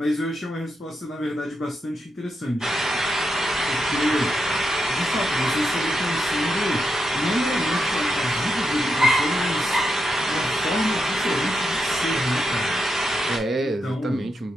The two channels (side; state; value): both; normal; correlation 0.84